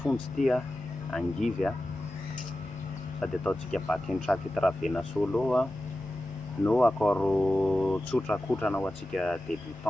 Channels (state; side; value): normal; both; correlation 0.93